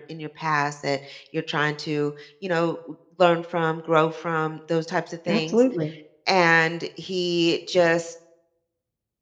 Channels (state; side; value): identical; both; correlation 1.00